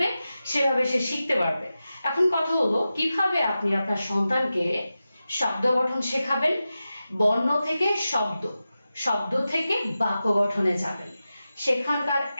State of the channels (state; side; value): inverted; both; correlation -0.93